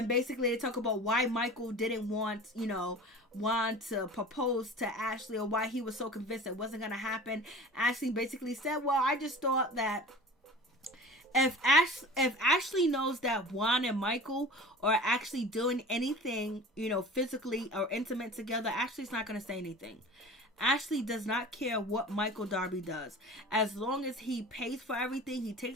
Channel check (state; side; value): normal; both; correlation 0.38